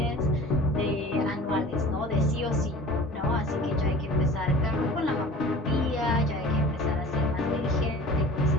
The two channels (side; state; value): both; normal; correlation 0.42